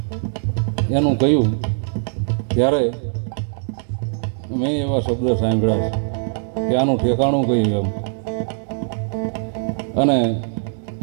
એનું કહ્યું ત્યારે મેં એવા શબ્દ સાંભળ્યા છે કે આનું ઠેકાણું કહ્યું એમ. અને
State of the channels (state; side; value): silent; left; 65 dB below the other